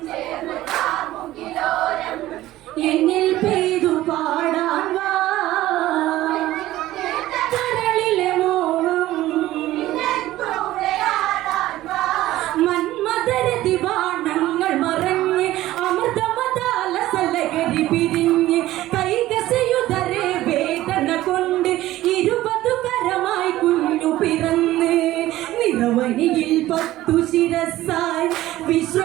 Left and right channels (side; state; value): left; quieter; 15.5 dB